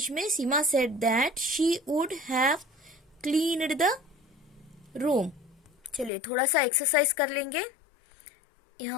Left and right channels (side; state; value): right; drops out; at 6.1 s